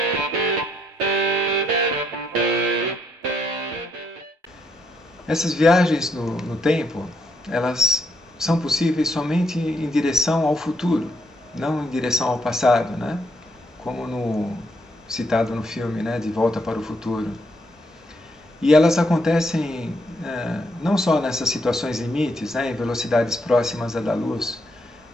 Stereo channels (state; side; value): normal; both; correlation 0.75